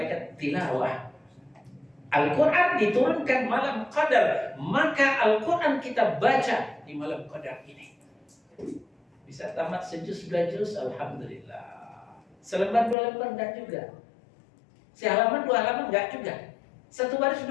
tilawah. Al-Quran diturunkan malam qadar, maka Al-Quran kita baca di malam qadar ini. Bisa tamat sejuz 2 juz, alhamdulillah. Selembar 2 lembar enggak juga. Sehalaman 2 halaman enggak juga. 1 baris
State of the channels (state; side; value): drops out; right; at 13.0 s